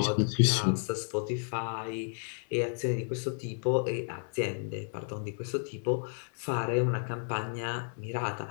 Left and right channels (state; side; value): silent; right; 56 dB below the other